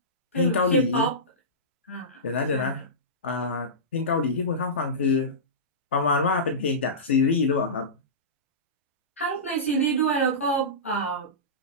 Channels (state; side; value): normal; both; correlation -0.19